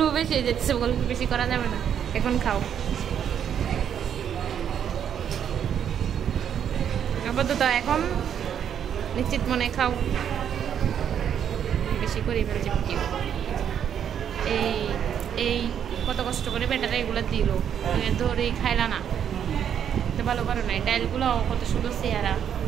গল্প বেশি করা যাবে না, এখন খাও আপাতত। এখন নিশ্চিত মনে খাও, বেশি করে ফেলছে ভিডিও। এই কত কষ্ট করে বেটারা এগুলো দিল, ধরে খাইলা না, ভালো করো না। ডালগুলো কত সুন্দর চেহারা,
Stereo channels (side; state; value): left; quieter; 8.8 dB